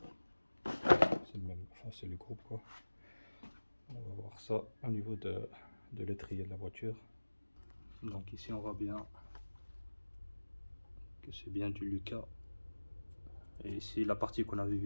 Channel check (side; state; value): both; inverted; correlation -1.00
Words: C'est le même, enfin c'est le groupe quoi. On va voir ça au niveau de l'étrier de la voiture. Donc ici on voit bien que c'est bien du Lucas. Et ici la partie qu'on avait